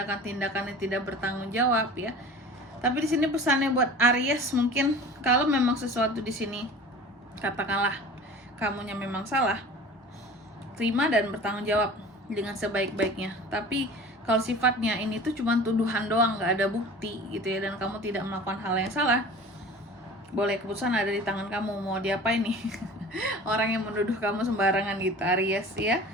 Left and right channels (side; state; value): both; normal; correlation 0.40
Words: yang tidak bertanggung jawab ya. Tapi di sini pesannya buat Aries, mungkin kalau memang sesuatu di sini katakanlah kamunya memang salah, terima dan bertanggung jawab dengan sebaik-baiknya. Tapi kalau sifatnya ini tuh cuma tuduhan doang, nggak ada bukti gitu ya, dan kamu tidak melakukan hal yang salah, boleh, keputusan ada di tangan kamu mau diapain nih orang yang menuduh kamu sembarangan gitu Aries ya.